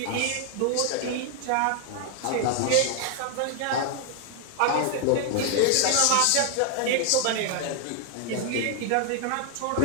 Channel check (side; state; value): both; different; correlation 0.00